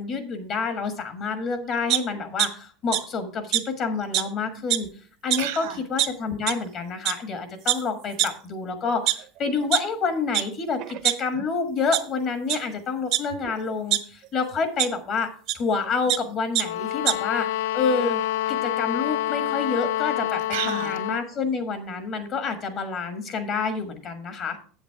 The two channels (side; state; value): both; normal; correlation 0.25